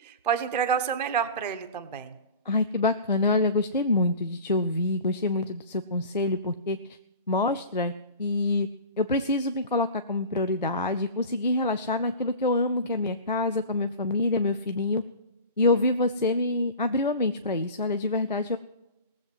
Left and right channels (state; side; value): inverted; both; correlation -0.36